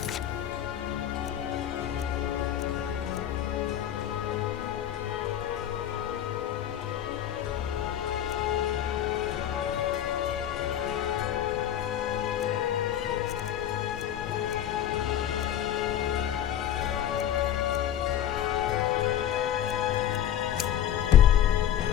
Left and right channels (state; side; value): quieter; right; 10.7 dB